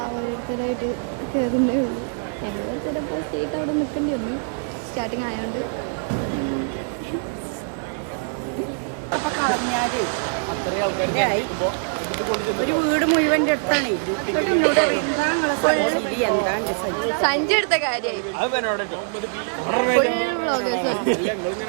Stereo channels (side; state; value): left; silent; digital silence